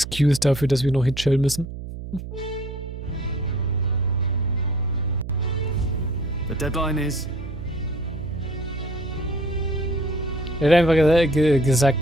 dafür, dass wir noch hier chillen müssen. The deadline is... Er hat einfach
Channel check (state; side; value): noise; right; hum, 9 dB below the sound